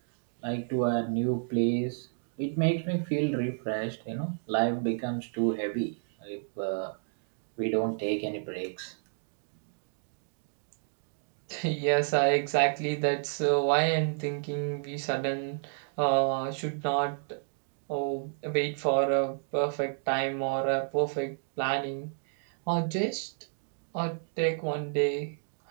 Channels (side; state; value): left; silent; digital silence